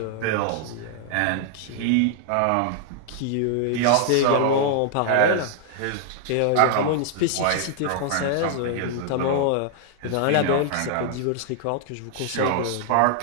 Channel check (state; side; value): different; both; correlation 0.00